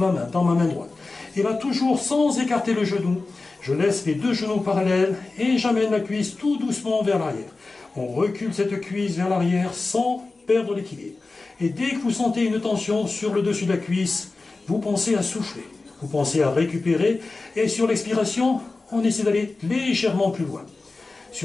main, dans ma main droite. Et là, toujours sans écarter le genou, je laisse les deux genoux parallèles et j'amène la cuisse tout doucement vers l'arrière. On recule cette cuisse vers l'arrière sans perdre l'équilibre. Et dès que vous sentez une tension sur le dessus de la cuisse, vous pensez à souffler, vous pensez à récupérer, et sur l'expiration, on essaie d'aller légèrement plus loin.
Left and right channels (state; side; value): quieter; right; 3.6 dB